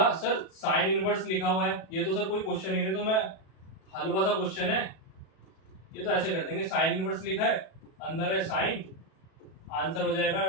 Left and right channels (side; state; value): right; late; 37 ms